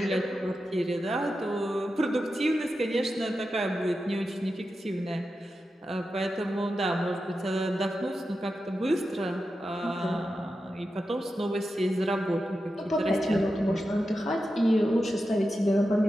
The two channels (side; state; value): both; normal; correlation 0.90